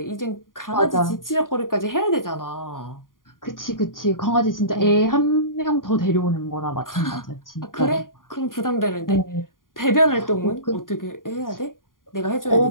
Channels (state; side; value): late; right; 0.90 ms